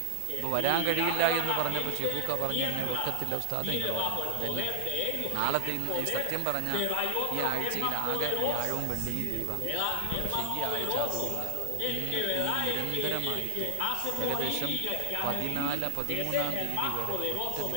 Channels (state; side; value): different; both; correlation 0.00